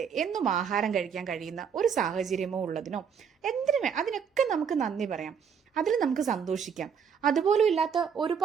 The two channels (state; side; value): quieter; left; 7.1 dB